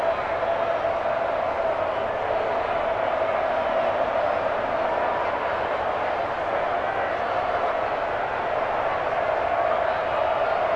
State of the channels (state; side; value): identical; both; correlation 1.00